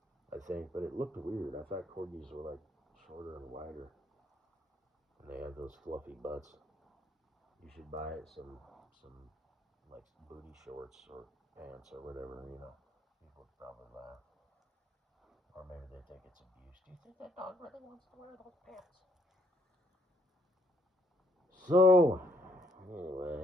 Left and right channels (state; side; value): normal; both; correlation 0.68